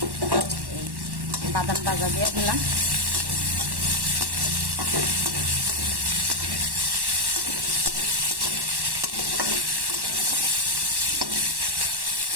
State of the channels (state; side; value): late; left; 1.1 ms